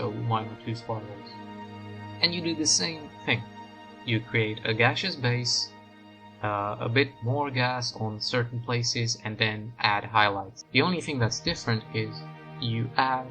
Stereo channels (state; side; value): identical; both; correlation 1.00